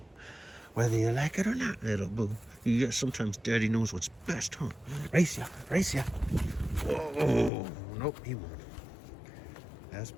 Whether you like it or not, Little Boo. Yeah, sometimes Daddy knows what's best, huh? Race ya, race ya. Whoa, nope, he won't. As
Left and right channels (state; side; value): drops out; right; at 7.5 s